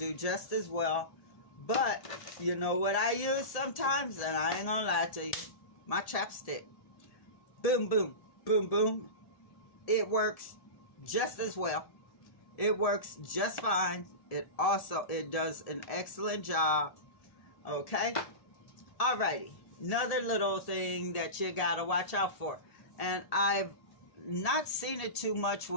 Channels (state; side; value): late; right; 1.8 ms